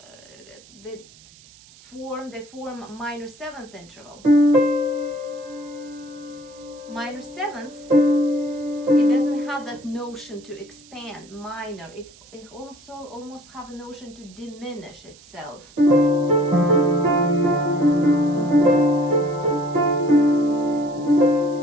they form a minor seventh interval. Minor seventh, it doesn't have that notion to expand. Minor, it also almost have a notion to diminish itself.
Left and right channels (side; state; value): right; noise; hiss, 24 dB below the sound